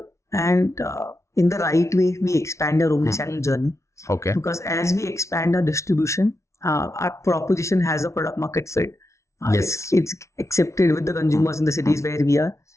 and in the right way we expand our omnichannel journey. Okay. Because as we expand our distribution, our proposition has a product market fit. Yes. It's accepted with the consumers in the cities where we are.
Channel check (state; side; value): late; right; 0.14 ms